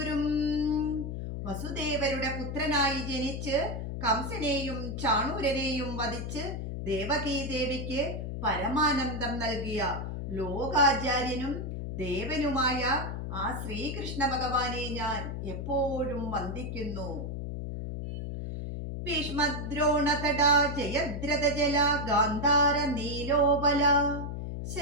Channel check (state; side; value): noise; left; hum, 5 dB below the sound